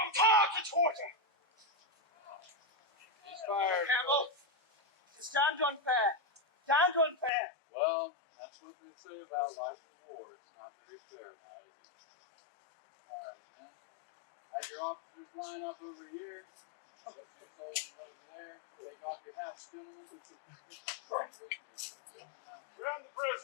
time to quarter! He's fired. Campbell, it's damned unfair. Damned unfair. Well, that's what they say about life in war. It's not very fair now, is it? Alright, man. Had your officers line up over here. Put your soldiers over there. Take off your hats, gentlemen. Round the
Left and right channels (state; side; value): drops out; right; at 7.3 s